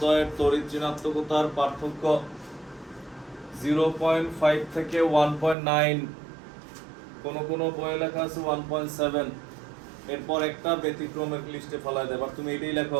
তড়িৎ ঋণাত্মকতার পার্থক্য 0.5 থেকে 1.9, কোন বইয়ে লেখা আছে 1.7, এরপর একটা ব্যতিক্রমের লিস্টে ফেলা দেয়। এবার তুমি এটাই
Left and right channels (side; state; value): left; drops out; at 5.6 s